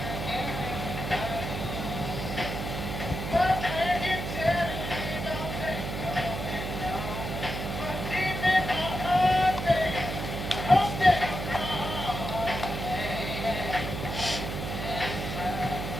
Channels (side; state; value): right; noise; hum, 5 dB below the sound